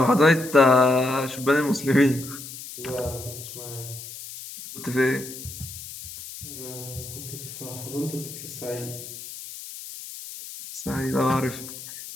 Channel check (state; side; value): noise; left; hiss, 12 dB below the sound